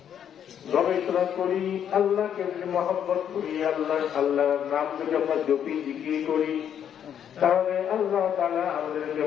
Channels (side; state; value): right; quieter; 9.1 dB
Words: গবেষণা করি, আল্লাহকে যদি মহব্বত করি, আল্লাহর নাম যদি আমরা জপি জিকির করি, তাহলে আল্লাহ তাআলা আমাদেরকে